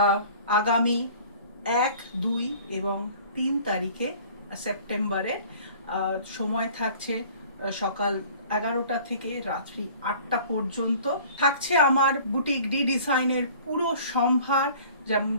আগামী 1, 2 এবং 3 তারিখে সেপ্টেম্বরের। সময় থাকছে সকাল 11টা থেকে রাত্রি 8টা পর্যন্ত। থাকছে আমার বুটিক ডি ডিজাইনের পুরো সম্ভার, যেমন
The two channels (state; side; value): inverted; both; correlation -0.48